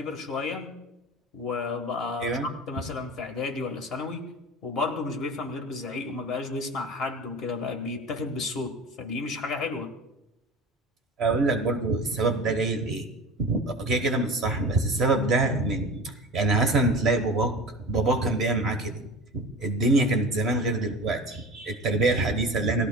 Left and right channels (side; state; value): both; normal; correlation 0.34